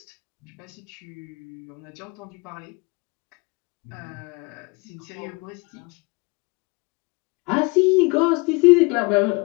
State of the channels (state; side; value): quieter; right; 27.8 dB